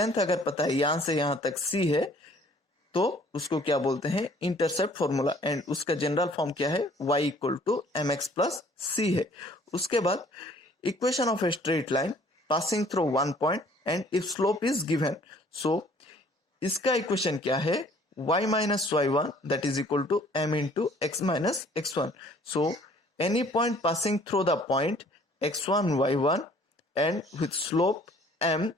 अगर पता है यहां से यहां तक c है, तो उसको क्या बोलते हैं, इंटरसेप्ट फॉर्मूला, एंड उसका जनरल फॉर्म क्या है, y equal to mx plus c है। उसके बाद equation of a straight line passing through one point and if slope is given, so इसका इक्वेशन क्या है, y minus y1 that is equal to m into x minus x1. So any point passing through the point x1 y1 and with slope m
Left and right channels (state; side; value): normal; both; correlation 0.56